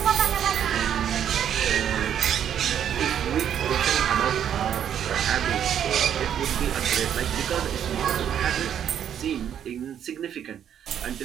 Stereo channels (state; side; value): quieter; left; 9.4 dB